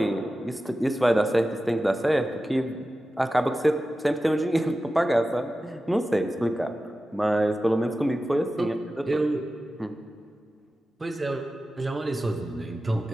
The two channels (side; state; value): both; normal; correlation 0.94